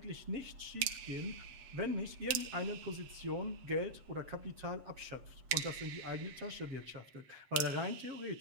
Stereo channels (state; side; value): late; left; 8.4 ms